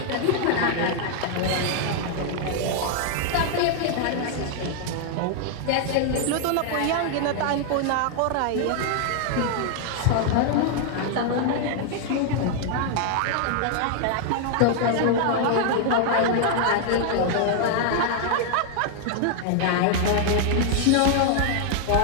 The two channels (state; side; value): different; both; correlation 0.00